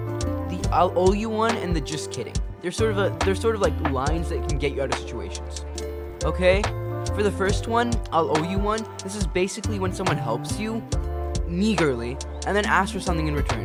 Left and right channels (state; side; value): identical; both; correlation 1.00